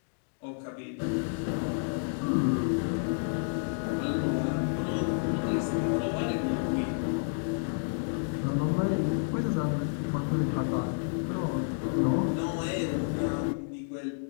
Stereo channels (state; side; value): silent; right; digital silence